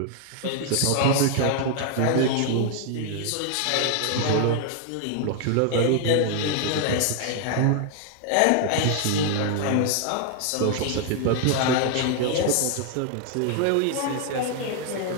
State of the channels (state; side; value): different; both; correlation 0.00